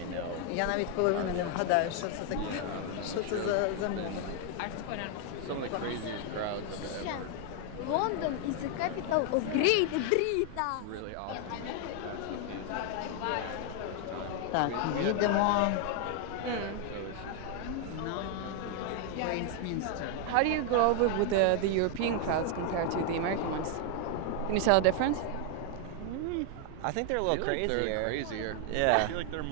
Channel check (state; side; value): different; both; correlation 0.00